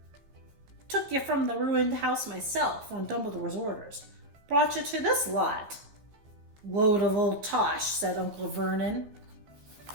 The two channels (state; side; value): late; left; 14 ms